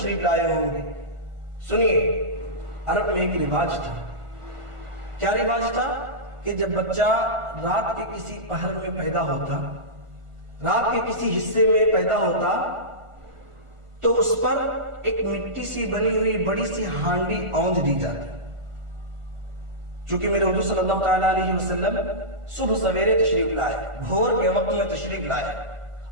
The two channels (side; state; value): left; late; 1.4 ms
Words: لائے ہوں گے۔ سنیے، عرب میں ایک رواج تھا، کیا رواج تھا؟ کہ جب بچہ رات کے کسی پہر میں پیدا ہوتا، رات کے کسی حصے میں پیدا ہوتا تو اس پر ایک مٹی سی بنی ہوئی بڑی سی ہانڈی اونج دی جاتی۔ چونکہ میرے حضور صلی اللہ تعالیٰ علیہ وسلم صبح سویرے تشریف لائے، بھور کے وقت میں تشریف لائے،